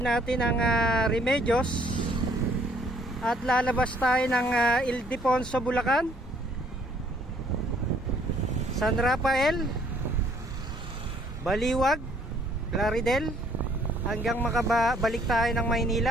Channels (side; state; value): both; normal; correlation 0.62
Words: natin ang Remedios at lalabas tayo ng Ildefonso, Bulacan, San Rafael, Baliwag, Plaridel, hanggang makabalik tayo ng